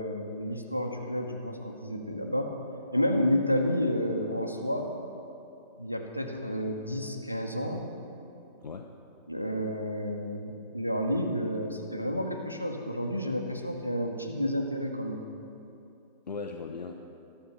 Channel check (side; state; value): both; inverted; correlation -0.73